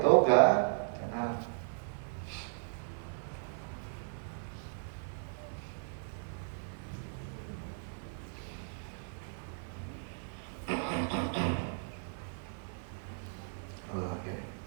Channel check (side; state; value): left; silent; 53 dB below the other